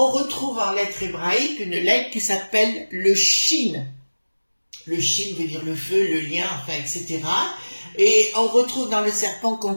retrouve en lettres hébraïques une lettre qui s'appelle le Shin. Le Shin veut dire le feu, le lien, enfin, etc. Et on retrouve dans le serpent,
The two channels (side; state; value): both; inverted; correlation -1.00